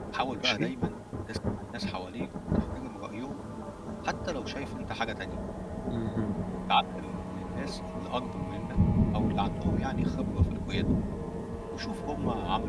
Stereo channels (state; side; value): identical; both; correlation 1.00